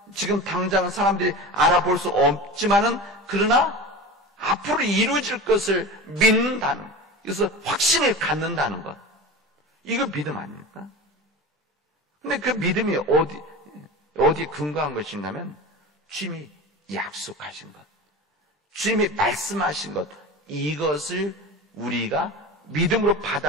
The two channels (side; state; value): both; normal; correlation 0.31